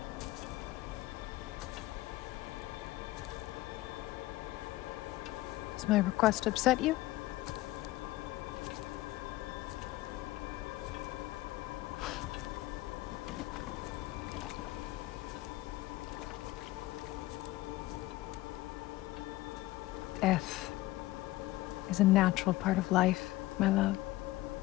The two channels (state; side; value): quieter; right; 17.8 dB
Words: Does my request upset you? Death is a natural part of life, my love.